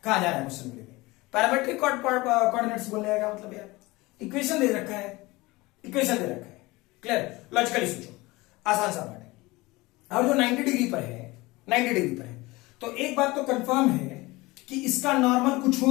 कहा जा रहा है क्वेश्चन में, पैरामेट्रिक कोऑर्डिनेट्स बोलने का मतलब यार इक्वेशन दे रखा है, क्लियर, लॉजिकली सोचो, आसान सा बात है। अब जो 90 डिग्री पर है, तो एक बात तो कंफर्म है कि इसका नॉर्मल कुछ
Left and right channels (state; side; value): quieter; right; 21.6 dB